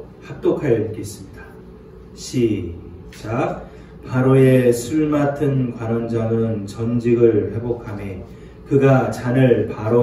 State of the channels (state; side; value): identical; both; correlation 1.00